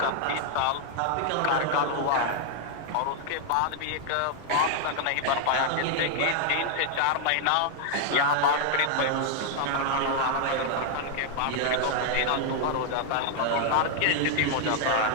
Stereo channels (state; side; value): different; both; correlation 0.00